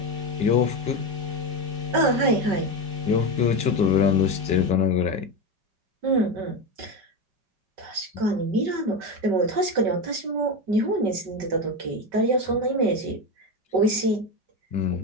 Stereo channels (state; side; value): late; left; 5.2 ms